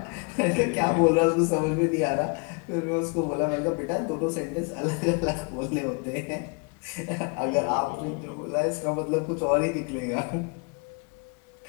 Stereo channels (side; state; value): right; quieter; 33.8 dB